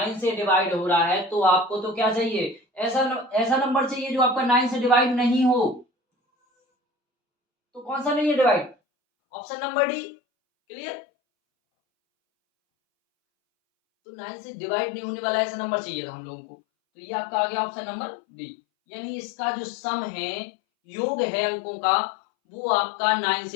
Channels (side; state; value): right; drops out; at 8.8 s